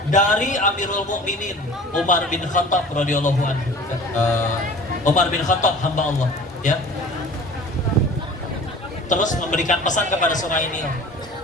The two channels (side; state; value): both; normal; correlation 0.43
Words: dari Amirul Mukminin Umar bin Khattab radhiyallahu anhu. Umar bin Khattab hamba Allah, ya. Terus memberikan pesan kepada Sungai Nil.